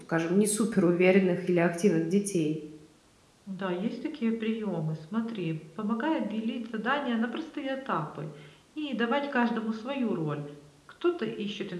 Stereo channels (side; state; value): both; identical; correlation 1.00